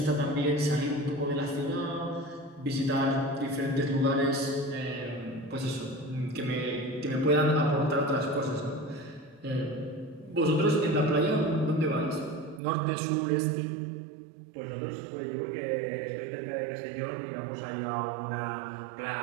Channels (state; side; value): drops out; left; at 12.6 s